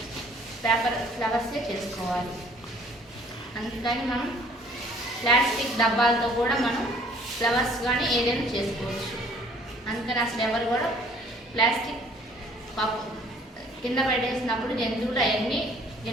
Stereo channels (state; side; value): normal; both; correlation 0.57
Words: పేపర్ ఫ్లవర్సే చేసుకోవాలి. అందుకని మనం ప్లాస్టిక్ డబ్బాలతో కూడా మనం ఫ్లవర్స్ కానీ ఏదైనా చేసుకోవచ్చు. అందుకని అసలు ఎవరు కూడా ప్లాస్టిక్ కింద పడేసినప్పుడు జంతువులు అవన్నీ